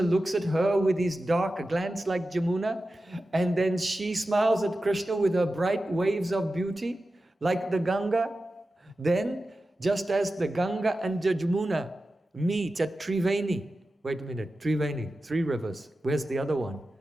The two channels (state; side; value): normal; both; correlation 0.93